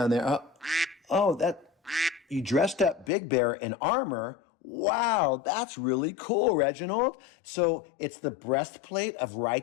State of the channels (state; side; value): drops out; right; at 3.1 s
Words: there? That you dressed up Big Bear in armor. Wow, that's really cool, Reginald. So it's the breastplate of